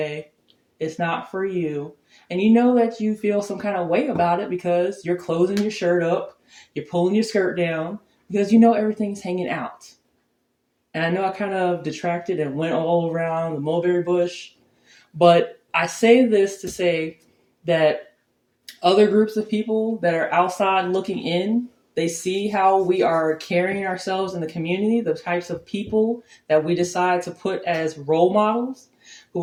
It's not for you. And you know that you feel some kind of way about it because you're closing your shirt up, you're pulling your skirt down, because you know everything's hanging out. And I know I kind of detracted and went all around the mulberry bush, but I say this to say that other groups of people that are outside looking in, they see how we are carrying ourselves in the community, the types of people that we decide to put as role models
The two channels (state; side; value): identical; both; correlation 1.00